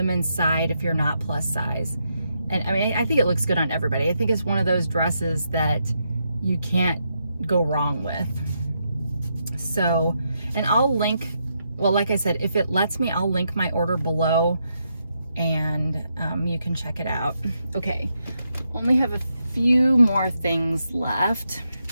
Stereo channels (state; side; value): inverted; both; correlation -0.81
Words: side if you're not plus size. And I mean, I think it looks good on everybody. I think it's one of those dresses that you can't go wrong with. So, and I'll link, well, like I said, if it lets me, I'll link my order below, and you can check it out. Okay, only have a few more things left.